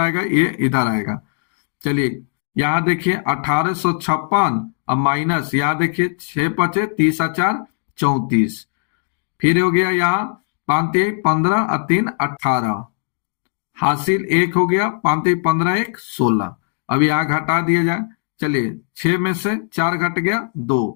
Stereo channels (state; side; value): silent; right; digital silence